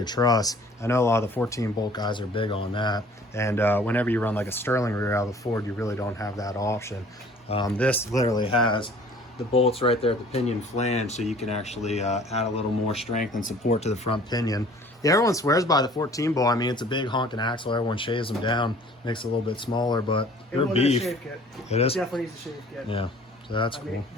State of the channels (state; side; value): normal; both; correlation 0.51